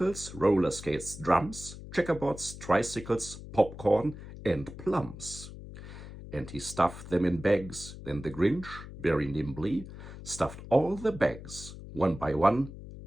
roller skates, drums, checkerboards, tricycles, popcorn, and plums. And he stuffed them in bags. Then the Grinch, very nimbly, stuffed all the bags, one by one,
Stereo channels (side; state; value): left; noise; hum, 13 dB below the sound